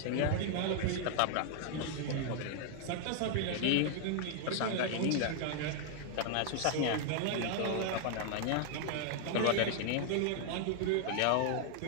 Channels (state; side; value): different; both; correlation 0.00